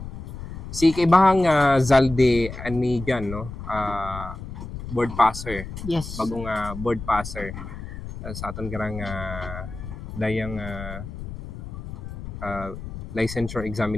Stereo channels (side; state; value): left; noise; rumble, 10 dB below the sound